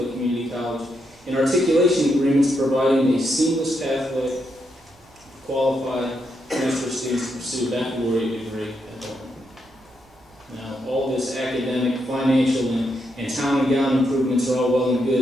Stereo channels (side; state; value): right; noise; rumble, 29 dB below the sound